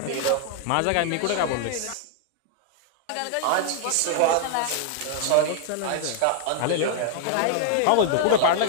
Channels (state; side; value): different; both; correlation 0.00